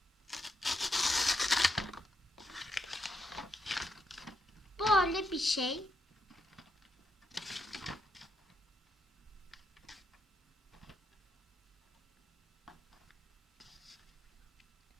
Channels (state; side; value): normal; both; correlation 0.81